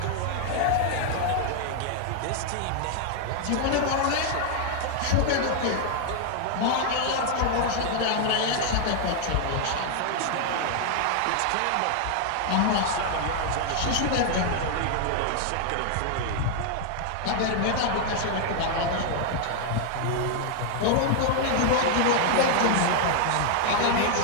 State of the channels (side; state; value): both; different; correlation 0.00